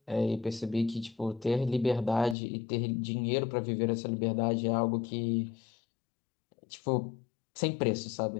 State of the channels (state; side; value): drops out; right; at 2.4 s